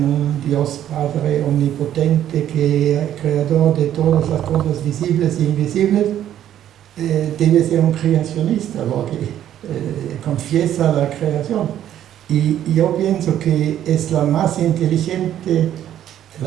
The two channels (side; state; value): left; quieter; 11.2 dB